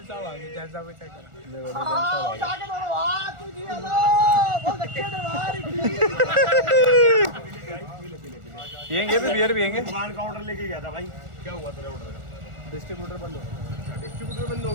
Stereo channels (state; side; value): late; left; 1.4 ms